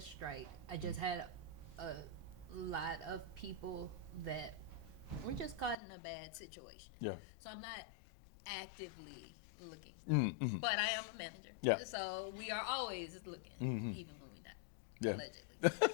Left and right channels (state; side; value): drops out; right; at 5.8 s